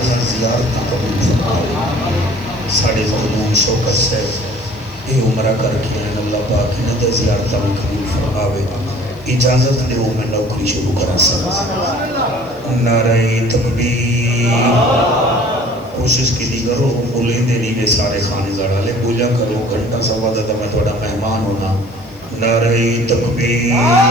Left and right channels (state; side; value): noise; left; hiss, 28 dB below the sound